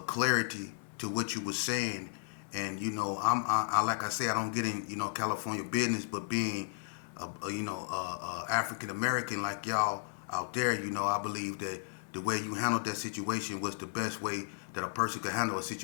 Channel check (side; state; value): right; silent; 55 dB below the other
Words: clarity to what you was saying. And I like I say, I don't get in California business, but being African American like y'all out there, I believe that the way you handled that situation was the best way that a person could handle a